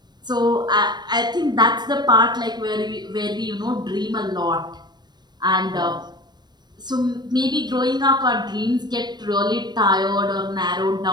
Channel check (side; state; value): left; late; 0.21 ms